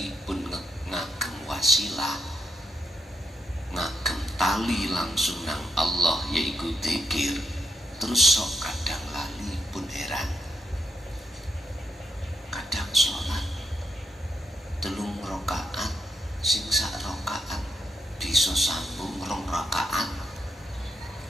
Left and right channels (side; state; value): both; normal; correlation 0.83